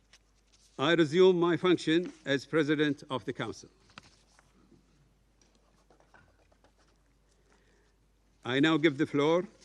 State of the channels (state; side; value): identical; both; correlation 1.00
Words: I resume my function as President of the Council. I now give the floor